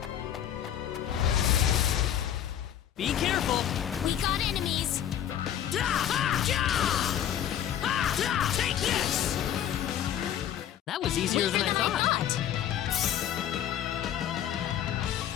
Be careful. We got enemies. Take this! That was easier than I thought.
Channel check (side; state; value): right; quieter; 10.3 dB